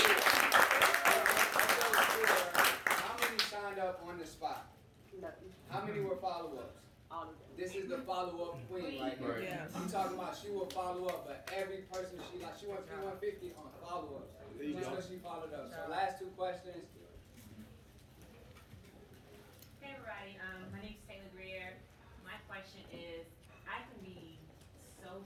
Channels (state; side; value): identical; both; correlation 1.00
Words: how many signed up on the spot? Nothing. How many were follow-ups? All of them. This is the follow-up queen right here. Yeah. I'm talking about she will follow up, but every person she went 350 on follow-ups. Just because she followed up. So last 2 questions. Hey everybody, my name's Taylor Greer. My question is, I can be so